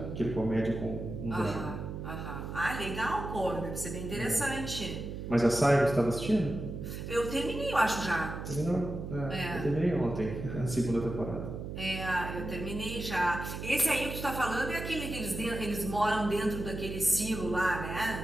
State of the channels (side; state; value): right; noise; hum, 7 dB below the sound